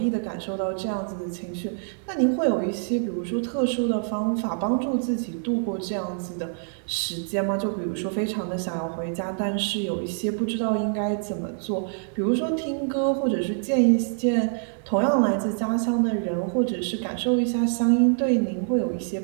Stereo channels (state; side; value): silent; left; digital silence